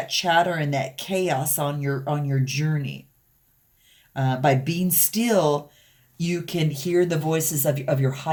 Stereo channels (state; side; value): identical; both; correlation 1.00